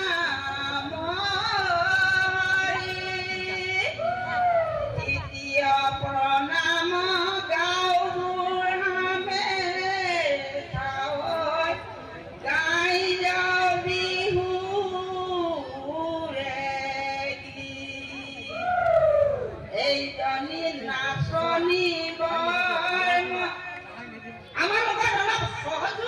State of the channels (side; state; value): both; identical; correlation 1.00